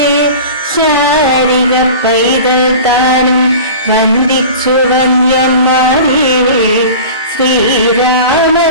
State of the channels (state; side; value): inverted; both; correlation -0.37